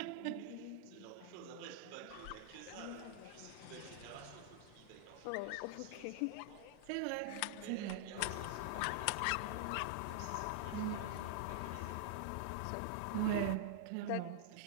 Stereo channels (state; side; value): different; both; correlation -0.01